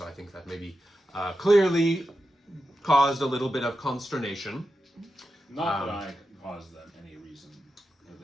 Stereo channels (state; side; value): normal; both; correlation 0.89